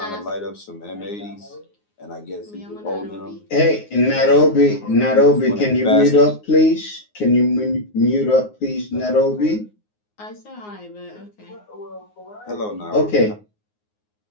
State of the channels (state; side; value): late; right; 9.6 ms